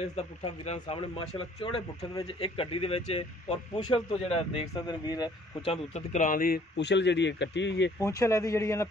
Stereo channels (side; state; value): both; normal; correlation 0.59